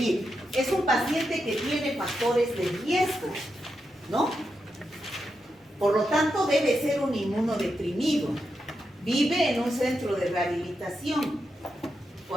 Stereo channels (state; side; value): normal; both; correlation 0.86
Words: Es un paciente que tiene factores de riesgo, ¿no? Por lo tanto, debe ser un inmunodeprimido. Vive en un centro de rehabilitación.